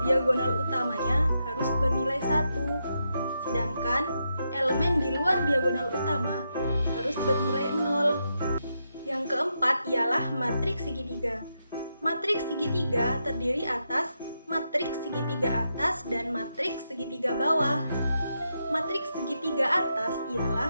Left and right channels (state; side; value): inverted; both; correlation -0.84